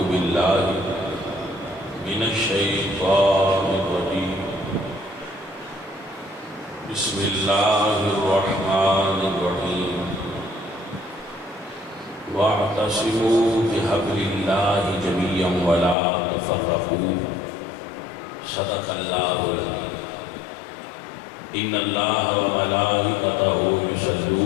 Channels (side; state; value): right; drops out; at 16.0 s